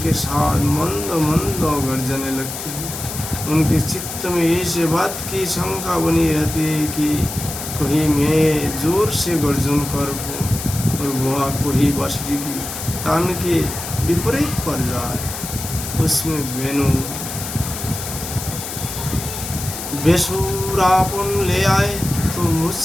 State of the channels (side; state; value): left; noise; hiss, 7 dB below the sound